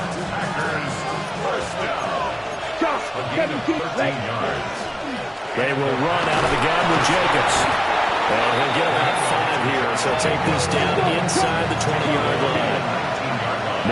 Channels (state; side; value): identical; both; correlation 1.00